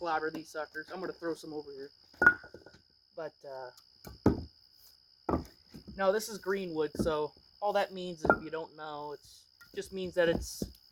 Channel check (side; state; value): both; identical; correlation 1.00